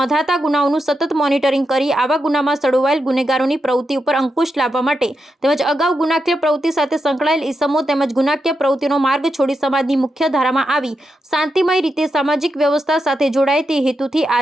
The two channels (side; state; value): both; normal; correlation 0.86